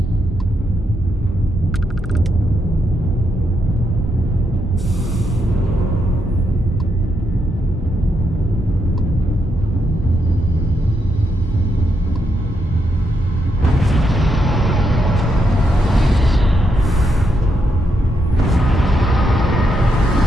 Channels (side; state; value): both; normal; correlation 0.80